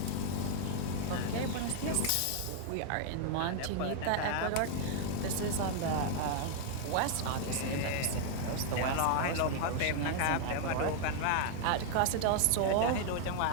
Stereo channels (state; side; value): different; both; correlation 0.00